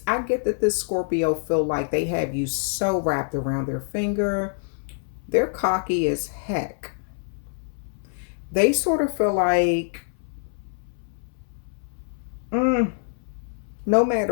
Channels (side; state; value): right; silent; 61 dB below the other